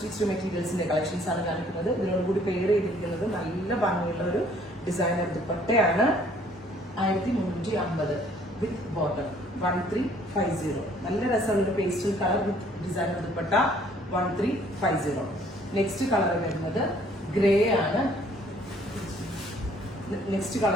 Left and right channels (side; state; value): both; normal; correlation 0.60